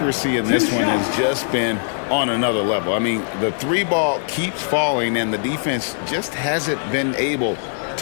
in this one has just been on another level. I mean, the 3 ball keeps falling, and the defense just hasn't been able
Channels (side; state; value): right; silent; digital silence